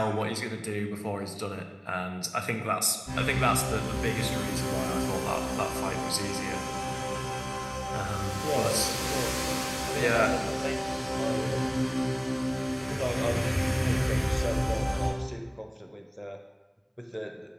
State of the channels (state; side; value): identical; both; correlation 1.00